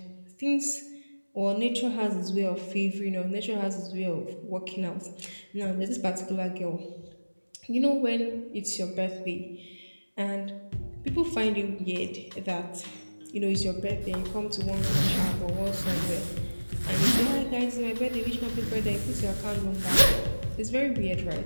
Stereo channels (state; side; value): inverted; both; correlation -1.00